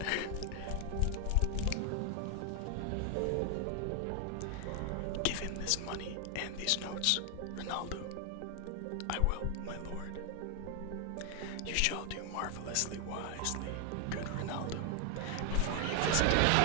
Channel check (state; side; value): different; both; correlation 0.00